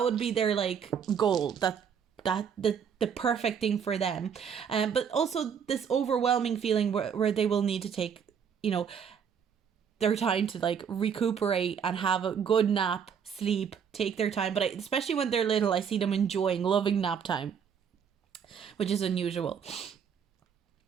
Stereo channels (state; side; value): quieter; left; 7.3 dB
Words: would be their, like, goal. The perfect thing for them. But also this overwhelming feeling where they will need to take, you know, their time to, like, recuperate and have a good nap, sleep, take their time. But especially when they're little, I see them loving nap time, which is unusual.